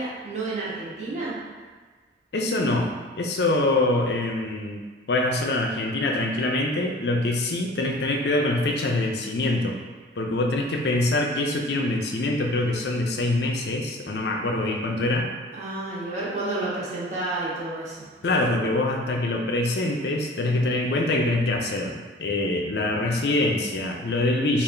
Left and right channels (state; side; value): normal; both; correlation 0.43